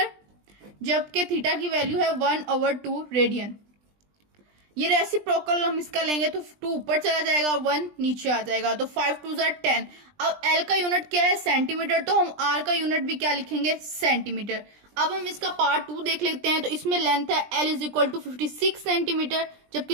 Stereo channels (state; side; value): late; left; 20 ms